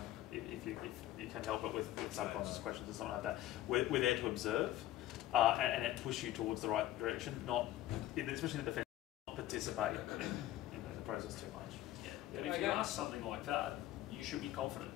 if you can help it with subconscious questions or something like that. We're there to observe and push you towards the right direction, especially in the defence, not participate in the process too much. Yeah. But if you ask something like that, you should be confident.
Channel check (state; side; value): quieter; right; 14.2 dB